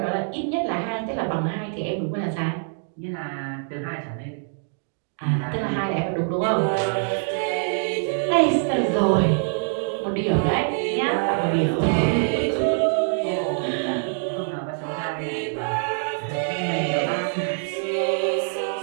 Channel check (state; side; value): silent; left; 62 dB below the other